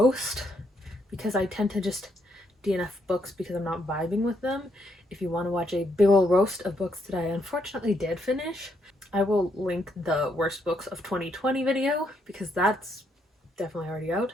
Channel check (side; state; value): both; normal; correlation 0.75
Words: because I tend to just DNF books because I'm not vibing with them. If you want to watch a big ol' roast of books that I unfortunately did finish, I will link the worst books of 2020 video because that's definitely already out.